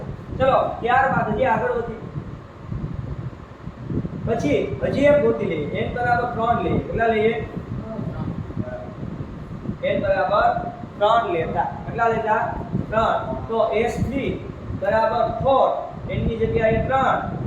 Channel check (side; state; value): both; identical; correlation 1.00